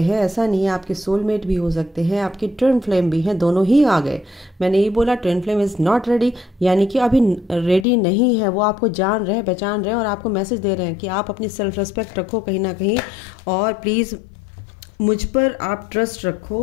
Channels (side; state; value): right; drops out; at 7.9 s